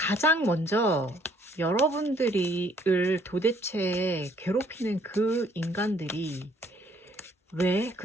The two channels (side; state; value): both; normal; correlation 0.64